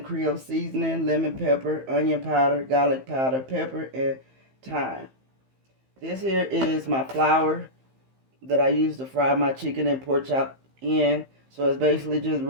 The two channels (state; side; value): late; left; 15 ms